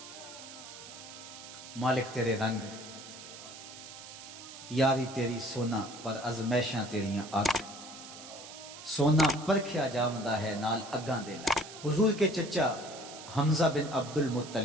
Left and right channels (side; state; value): right; noise; hiss, 14 dB below the sound